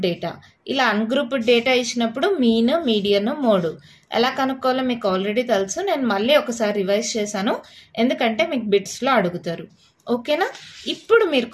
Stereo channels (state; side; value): identical; both; correlation 1.00